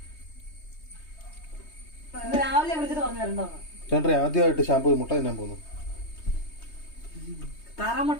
രാവിലെ വിളിച്ചിട്ട് പറഞ്ഞു തരണ്ടോന്ന്. ചേട്ടൻ ആദ്യമായിട്ട് ഷാമ്പൂ മുട്ട തിന്നാൻ പോകുന്നു.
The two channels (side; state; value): right; late; 3.2 ms